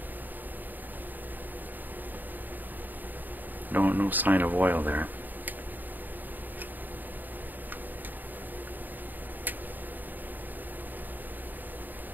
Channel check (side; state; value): left; late; 0.088 ms